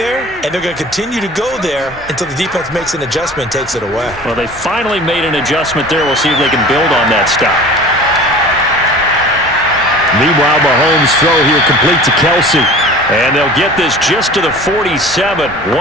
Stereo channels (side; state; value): both; normal; correlation 0.42